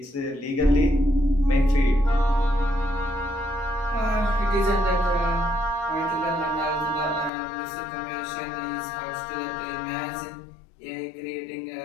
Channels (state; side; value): drops out; right; at 7.3 s